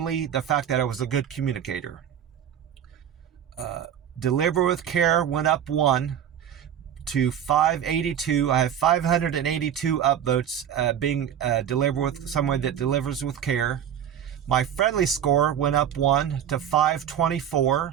the fact that I was a good communicator. Deliver with Care went up 1 to 582. I have 582 upvotes being delivered with someone that delivers with care. My friendly score went up 1 to 524.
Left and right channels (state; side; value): quieter; left; 9.5 dB